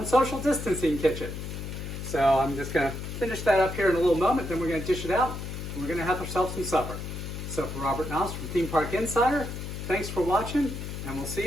Social Distancing Kitchen. So I'm just going to finish that up here in a little moment, then we're going to dish it out, and we're going to have ourselves some supper. So for Robert Noss from Theme Park Insider, thanks for watching, and we'll see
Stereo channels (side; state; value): left; noise; hum, 7 dB below the sound